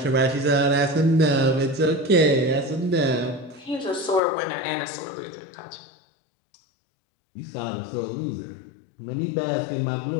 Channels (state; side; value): drops out; right; at 4.2 s